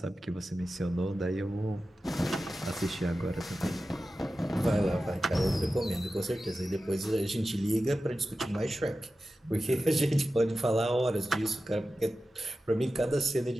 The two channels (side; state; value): both; normal; correlation 0.94